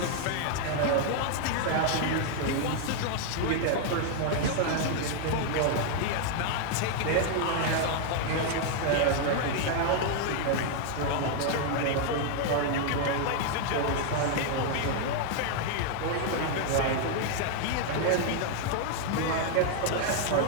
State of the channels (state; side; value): different; both; correlation 0.00